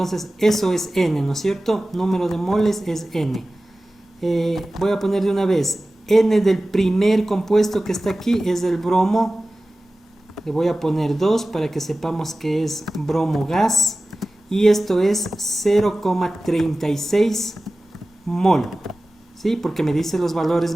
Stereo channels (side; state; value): both; normal; correlation 0.96